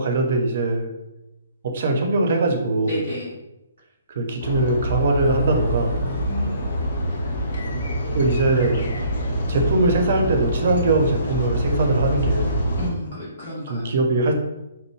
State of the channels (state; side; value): inverted; both; correlation -0.58